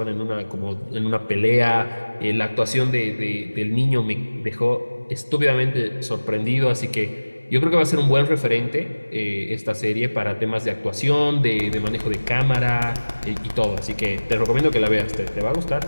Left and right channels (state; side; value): inverted; both; correlation -1.00